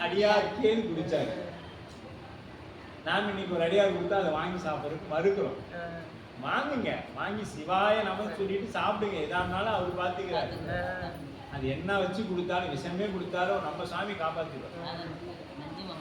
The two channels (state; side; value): identical; both; correlation 1.00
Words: அடியார்க்கேன்னு குடிச்சாரு. நாம இன்னைக்கு ஒரு அடியார் கொடுத்தா அதை வாங்கி சாப்பிட்றதுக்கு மறுக்கிறோம். வாங்குங்க, வாங்கி சிவாய நம சொல்லிட்டு சாப்பிடுங்க, எதா இருந்தாலும் அவர் பார்த்துக்கிறாரு. அது என்ன வச்சு கொடுத்தாலும் விஷமே கொடுத்தாலும் நம்ம சாமி காப்பாத்திடுவோம்.